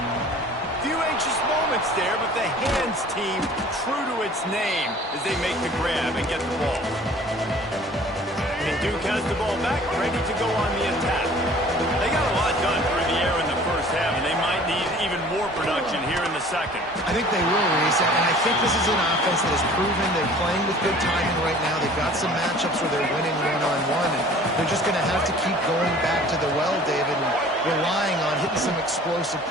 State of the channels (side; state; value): both; normal; correlation 0.49